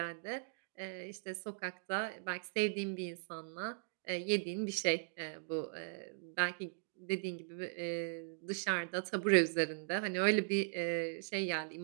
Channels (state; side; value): silent; left; digital silence